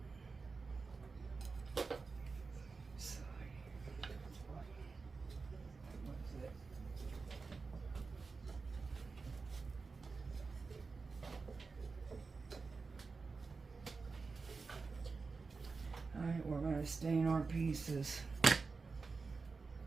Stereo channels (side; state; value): left; quieter; 4.4 dB